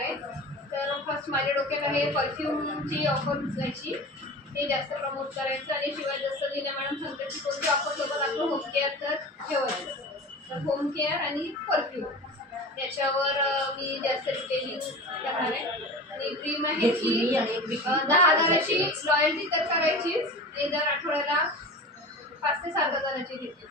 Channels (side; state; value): both; normal; correlation 0.33